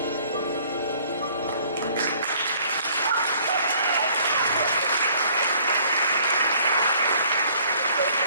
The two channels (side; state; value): both; inverted; correlation -0.58